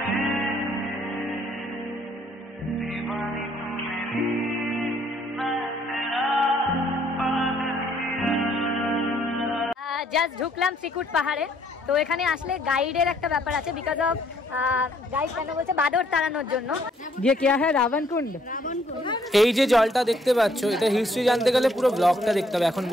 Just ঢুকলাম শ্রীকুট পাহাড়ে। তো এখানে আসলে গাইডের একটা ব্যাপার আছে, বিকজ অফ গাইড কেন বলছে বাদর তাড়ানোর জন্য। ये क्या है রাবণ কুণ্ড। এই যে জলটা দেখতে পাচ্ছ, এটা হিস্ট্রি জানতে গেলে পুরো ব্লগটা দেখতে হবে, এখন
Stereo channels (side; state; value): both; normal; correlation 0.66